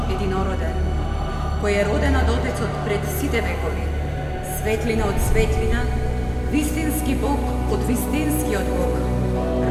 единороден, кој е роден од Отецот пред сите векови, светлина од светлина, вистински Бог од вистинскиот Бог,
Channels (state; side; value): identical; both; correlation 1.00